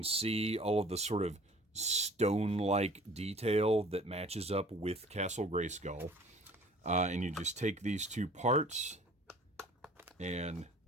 see all of the sort of stone-like detail that matches up with Castle Grayskull. And you just take these two parts and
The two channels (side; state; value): both; normal; correlation 0.49